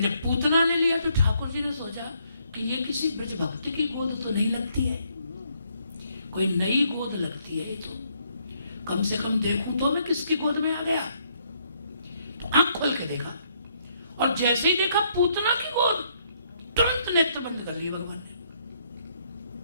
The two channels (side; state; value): both; inverted; correlation -0.70